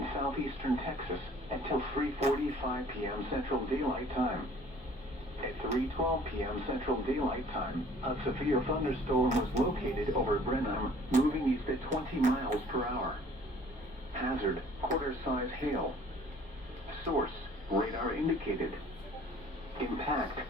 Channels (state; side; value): normal; both; correlation 0.53